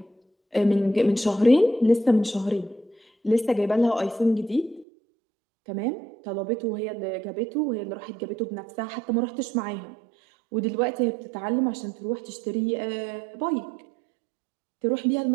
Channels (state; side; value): drops out; left; at 4.9 s